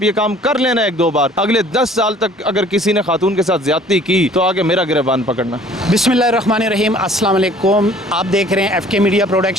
ये काम कर लेना 1-2 बार, अगले 10 साल तक अगर किसी ने खातून के साथ ज्यादती की तो आगे मेरा गिरबान पकड़ना। बिस्मिल्लाहिर्रहमानिर्रहीम, अस्सलाम वालेकुम। आप देख रहे हैं FK मीडिया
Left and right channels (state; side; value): normal; both; correlation 0.53